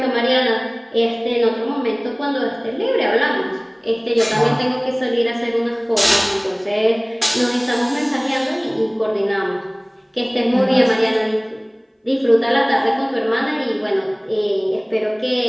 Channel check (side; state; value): both; identical; correlation 1.00